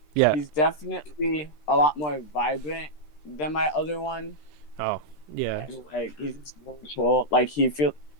Yeah. he's definitely a lot more vibrant than my other one. Oh, yeah. And, like, he's just really cool. Like he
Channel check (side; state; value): right; late; 13 ms